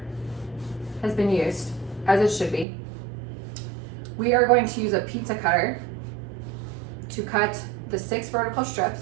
has been used, as it should be. We are going to use a pizza cutter to cut the 6 vertical strips.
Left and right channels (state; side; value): drops out; left; at 2.7 s